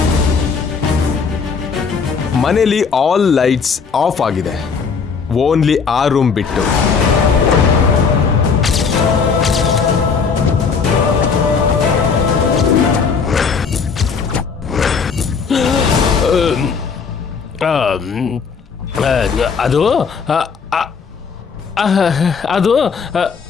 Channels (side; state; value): right; quieter; 5.6 dB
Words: ಮನೇಲಿ ಆಲ್ ಲೈಟ್ಸ್ ಆಫ್ ಆಗಿದೆ, ಓನ್ಲಿ ಆ ರೂಮ್ ಬಿಟ್ಟು. ಅದು ಅದು